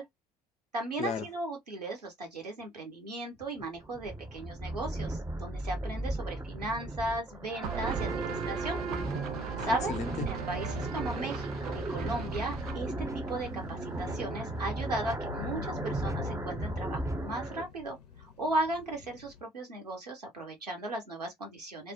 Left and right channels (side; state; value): both; normal; correlation 0.60